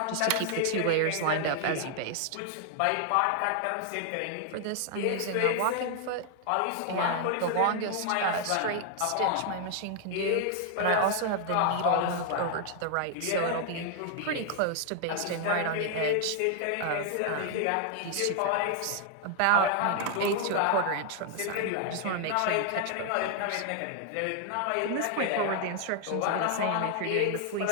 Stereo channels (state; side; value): different; both; correlation 0.00